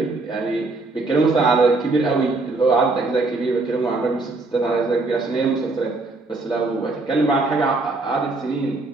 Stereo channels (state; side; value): quieter; left; 3.4 dB